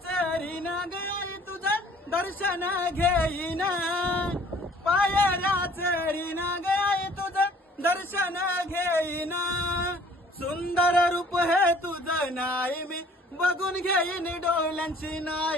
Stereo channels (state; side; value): normal; both; correlation 0.55